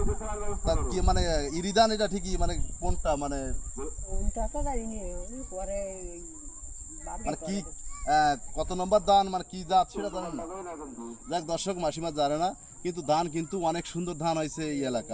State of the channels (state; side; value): identical; both; correlation 1.00